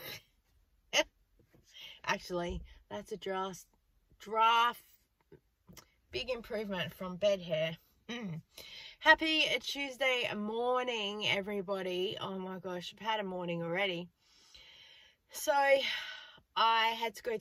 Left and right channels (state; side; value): identical; both; correlation 1.00